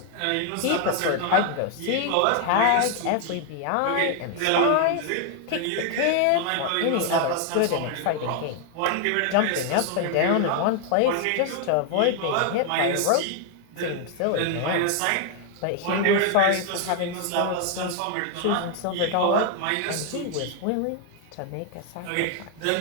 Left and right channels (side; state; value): both; different; correlation 0.00